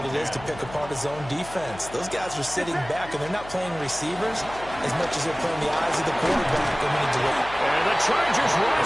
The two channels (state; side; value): noise; left; hum, 16 dB below the sound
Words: it is to pick apart his own defense. Those guys are sitting back, and they're not playing receivers as much as they're playing the eyes of the quarterback. And the Chargers